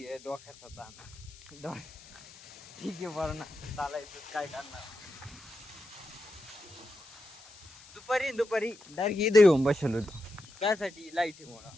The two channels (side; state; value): left; noise; hiss, 21 dB below the sound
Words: डोक्यात होता. ठीक आहे पोरांना, चालायचं काय करणार. दुपारी डायरेक्ट इथं येऊन बसलो होतो. त्यासाठी लाईटीमुळं